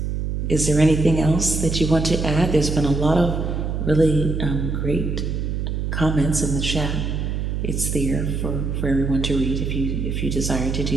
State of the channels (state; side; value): noise; right; hum, 2 dB below the sound